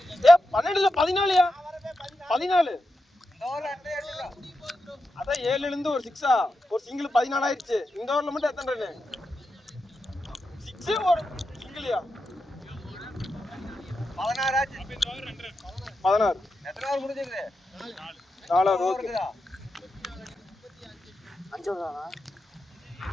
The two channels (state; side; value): normal; both; correlation 0.88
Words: 12 இல்ல 14யா? 14. இந்த ஓவரில் அட்டை அடிச்சுடா. அதான் 7ல இருந்து ஒரு 6ஆ, ஒரு சிங்கிள் 14 ஆயிடுச்சு. இந்த ஓவர்ல மட்டும் எத்தனை ரன்? 6 ஒரு சிங்கிள்யா? 16 ஆச்சு. 16. எத்தனை ஓவர் முடிஞ்சிருக்குது? 4 ஓவர். 5 ஓவரா?